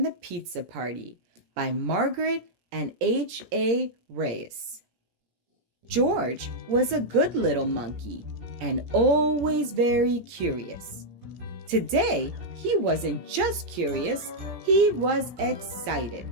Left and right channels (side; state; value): left; late; 17 ms